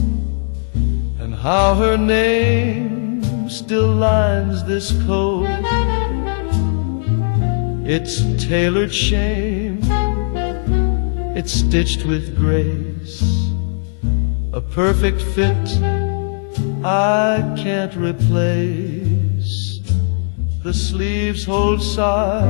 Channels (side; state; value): right; silent; 66 dB below the other